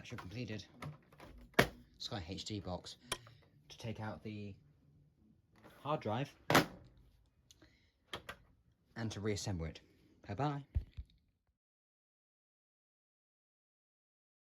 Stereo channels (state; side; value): identical; both; correlation 1.00